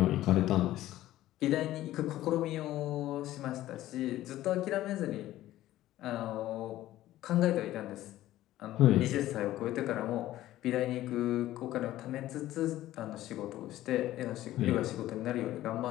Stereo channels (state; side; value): quieter; right; 14.7 dB